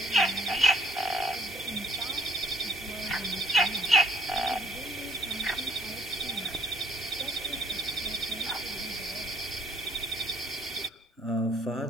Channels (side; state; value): both; normal; correlation 0.60